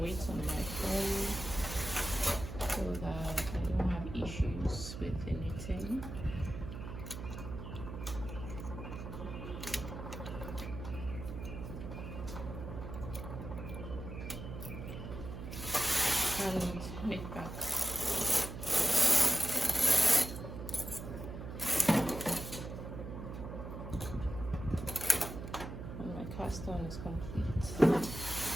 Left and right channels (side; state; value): right; noise; hum, 8 dB below the sound